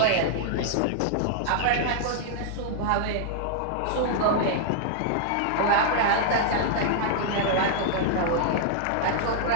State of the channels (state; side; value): different; both; correlation -0.01